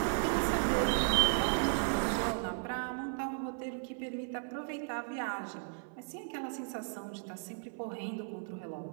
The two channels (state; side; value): silent; left; 54 dB below the other